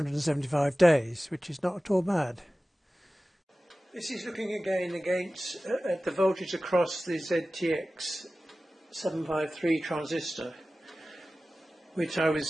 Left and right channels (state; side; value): normal; both; correlation 0.96